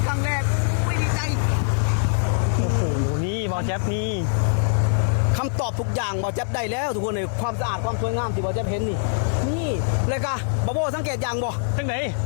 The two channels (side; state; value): right; silent; digital silence